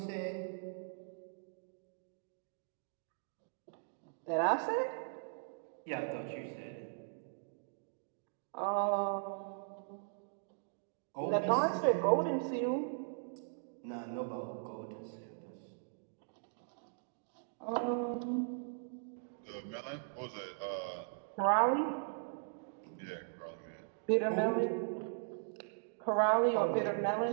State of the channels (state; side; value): silent; left; digital silence